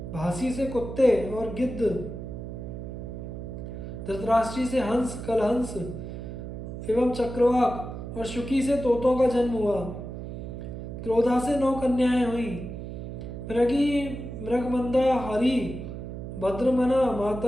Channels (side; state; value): right; noise; hum, 8 dB below the sound